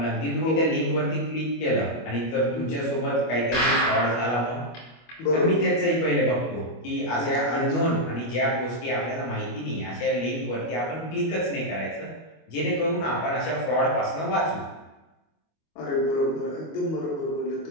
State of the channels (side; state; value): right; late; 25 ms